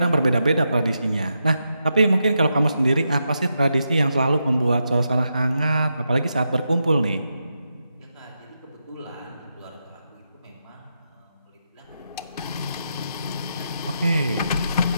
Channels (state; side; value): inverted; both; correlation -0.85